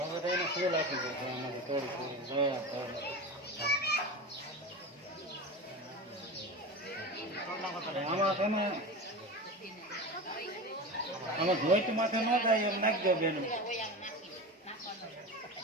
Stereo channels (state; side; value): normal; both; correlation 0.27